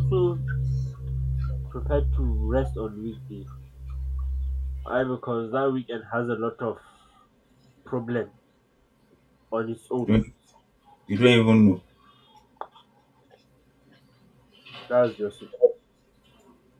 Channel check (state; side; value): identical; both; correlation 1.00